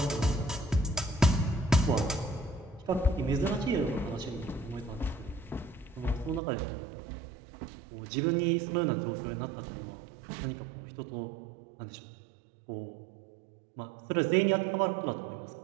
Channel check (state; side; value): drops out; left; at 6.4 s